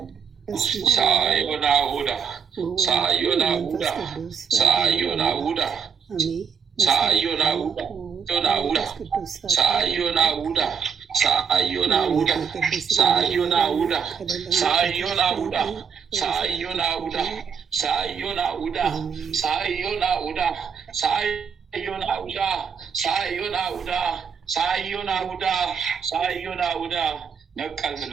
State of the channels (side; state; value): left; quieter; 6.6 dB